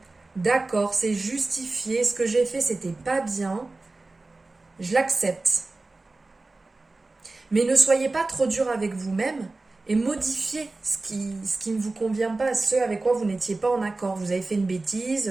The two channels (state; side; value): quieter; left; 3.3 dB